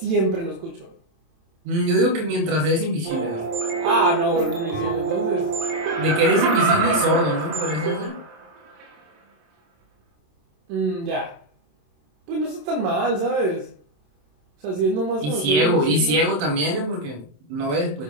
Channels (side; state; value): left; late; 27 ms